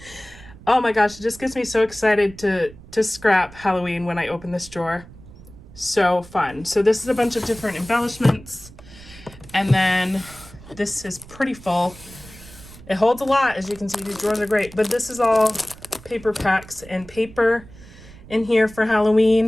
Oh my gosh, it just gets me so excited to scrap Halloween when I open this drawer. So fun. So this is a bunch of different embellishments. And then this is pretty full. It holds a lot, as you can see. These drawers are great. But this is all paper packs and paper in here for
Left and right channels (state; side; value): noise; right; rumble, 20 dB below the sound